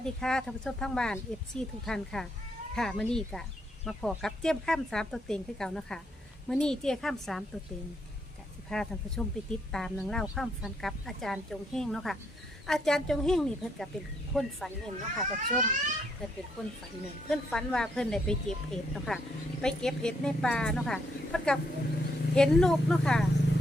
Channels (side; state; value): both; normal; correlation 0.74